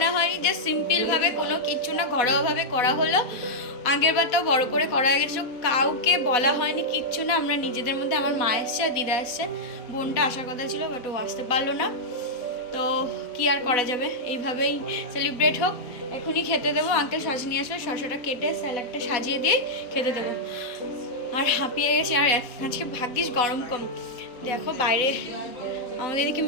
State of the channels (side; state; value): right; late; 4.1 ms